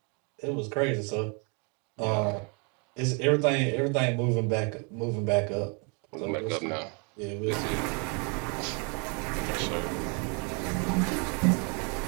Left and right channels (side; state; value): left; quieter; 34.7 dB